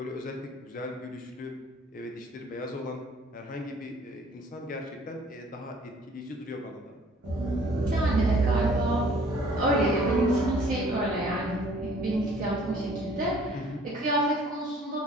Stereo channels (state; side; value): normal; both; correlation 0.55